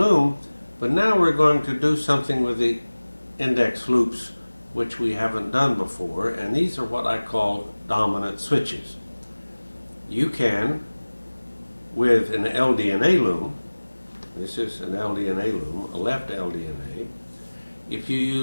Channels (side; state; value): both; inverted; correlation -1.00